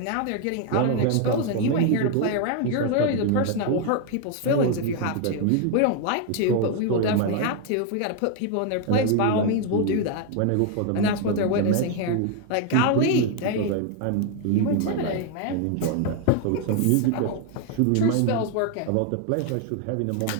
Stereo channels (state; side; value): different; both; correlation 0.01